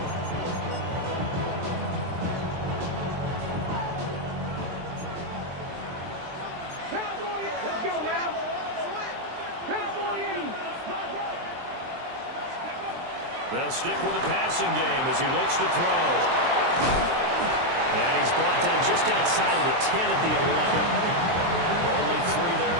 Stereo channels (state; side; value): late; left; 23 ms